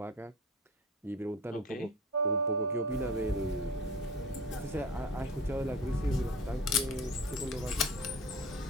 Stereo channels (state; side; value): normal; both; correlation 0.37